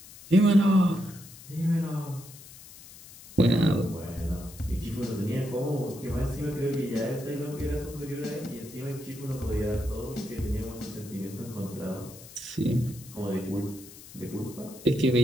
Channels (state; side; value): noise; left; hiss, 18 dB below the sound